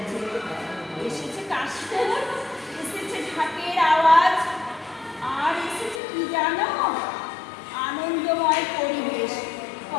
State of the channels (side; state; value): right; drops out; at 6.0 s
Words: এসেছে কাশফুল, এসেছে ঢাকের আওয়াজ, আর এসেছে কি জানো, আনন্দময় পরিবেশ।